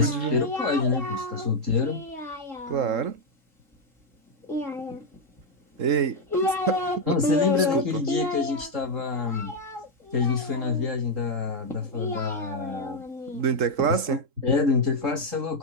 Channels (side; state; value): left; late; 3.7 ms